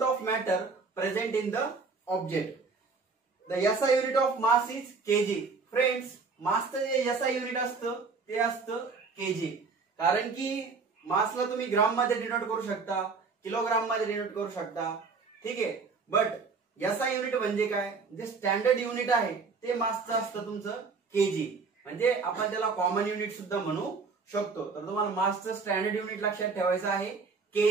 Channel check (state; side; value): quieter; left; 4.6 dB